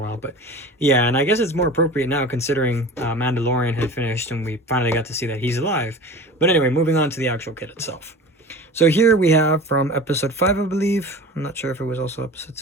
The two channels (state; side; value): normal; both; correlation 0.36